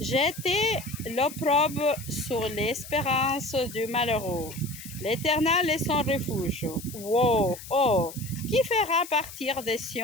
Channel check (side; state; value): left; noise; hiss, 14 dB below the sound